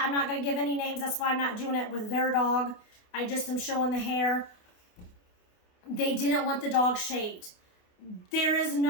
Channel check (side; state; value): right; late; 28 ms